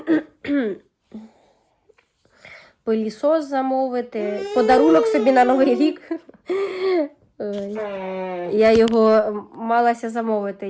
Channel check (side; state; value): both; identical; correlation 1.00